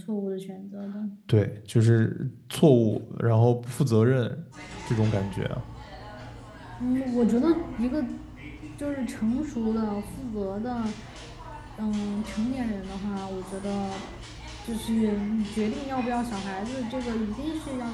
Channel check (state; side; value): identical; both; correlation 1.00